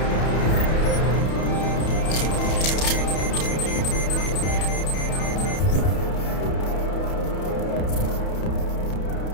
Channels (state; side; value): late; right; 31 ms